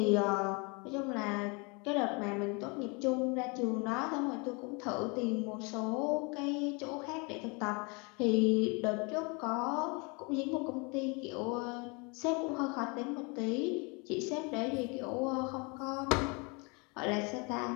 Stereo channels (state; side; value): quieter; right; 30.7 dB